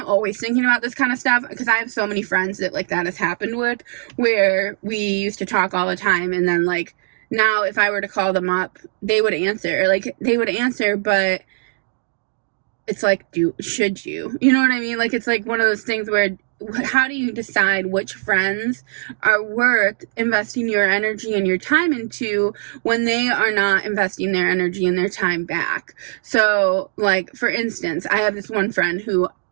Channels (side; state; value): left; silent; digital silence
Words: always thinking about this kind of stuff, because I have so many friends that, like, that has happened with, where we used to talk all the time, and then, like, now if I were to call them up, they would answer, but it's like, should you? You know what I mean? Like, it's like one of those things where, how do you decide which friends are worth investing your energy and your time into when they are not investing their energy and their time back? So, like, for instance, I have this one friend who